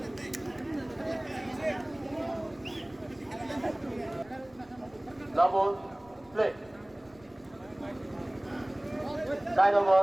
Double, split. Side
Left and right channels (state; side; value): noise; left; rumble, 27 dB below the sound